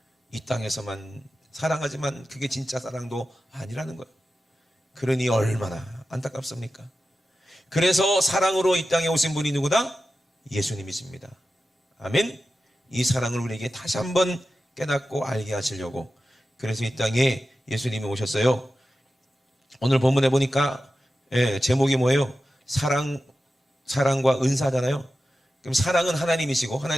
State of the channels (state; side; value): normal; both; correlation 0.93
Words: 이 땅에서만 사랑하지만 그게 진짜 사랑도 아니라는 거예요. 그러니 얼마나 안타깝습니까? 그래서 사랑으로 이 땅에 오신 분이 누구다? 예수님이십니다. 아멘. 이 사랑을 우리에게 다시 한번 깨닫고 알게 하시려고, 그래서 이 땅에 예수님이 오셨어요. 오늘 본문에 보니까 제목이 뭐예요? 사랑과 은사잖아요. 그럼 사랑은 하나님이시고